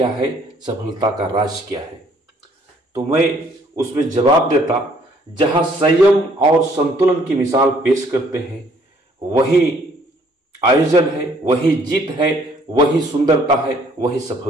है, सफलता का राज क्या है, तो मैं उसमें जवाब देता, जहां संयम और संतुलन की मिसाल पेश करते हैं वही आयोजन है, वही जीत है, वही सुंदरता है, वही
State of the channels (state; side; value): normal; both; correlation 0.62